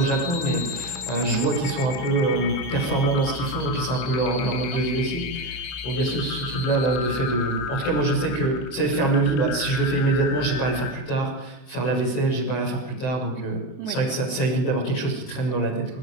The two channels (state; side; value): late; right; 23 ms